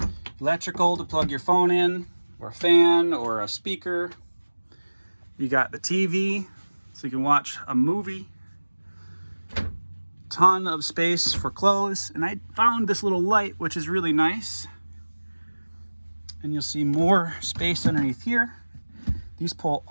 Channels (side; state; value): both; inverted; correlation -1.00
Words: Electrical to plug your phone in, or a fan, or a speaker. You got the TV, so you can watch a movie. Ton of space for clothes, and I found this little light, which is really nice. And you'll see more space underneath here. These pull